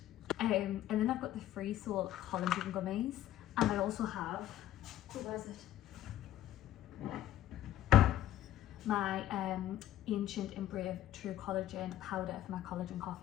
And then I've got the Free Soul collagen gummies, and I also have, where is it? My Ancient and Brave True Collagen powder for my collagen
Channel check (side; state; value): right; quieter; 12.8 dB